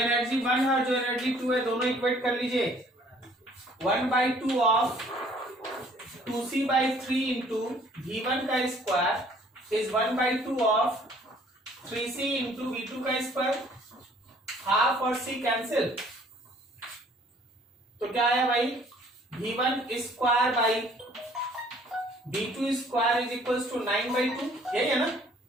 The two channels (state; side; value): normal; both; correlation 0.58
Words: 1 है और जो एनर्जी 2 है दोनों इक्वेट कर लीजिए। 1/2 ऑफ 2C/3 इंटू V1 का square is 1/2 of 3C into V2 का स्क्वायर, हाफ और C कैंसिल, तो क्या आया भाई V1 square by V2 square is equals to 9/2, यही है ना।